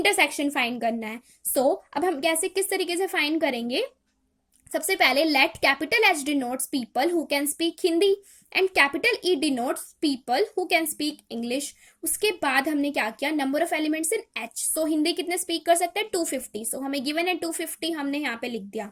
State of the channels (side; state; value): both; identical; correlation 1.00